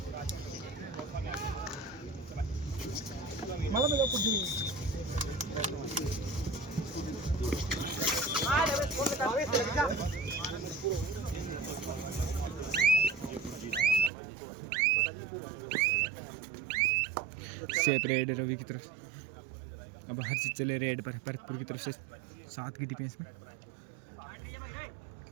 सेप रेड रवि की तरफ से। अब हर चीज चले रेड पर भरतपुर की तरफ से 7 की डिफेंस में।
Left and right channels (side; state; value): left; drops out; at 14.1 s